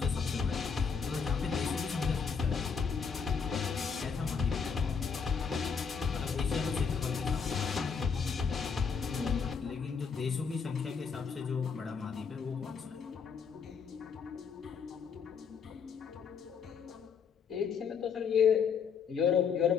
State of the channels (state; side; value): quieter; right; 6.1 dB